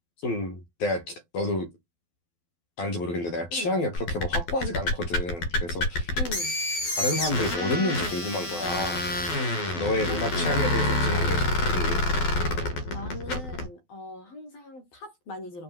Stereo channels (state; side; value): late; right; 12 ms